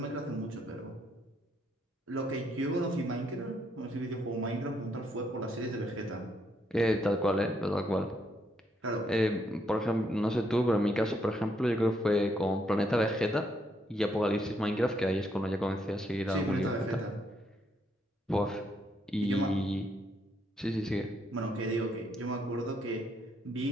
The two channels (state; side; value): normal; both; correlation 0.74